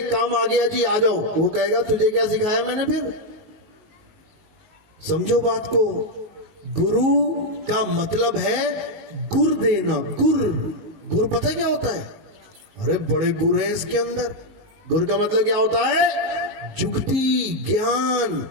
काम आ गया जी आ जाओ। वो कहेगा तुझे क्या सिखाया मैंने फिर? समझो बात को। गुरु का मतलब है गुर देना। गुर पता है क्या होता है? अरे बड़े गुर है इसके अंदर। गुर का मतलब क्या होता है? जुगती, ज्ञान।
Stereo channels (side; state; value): left; late; 19 ms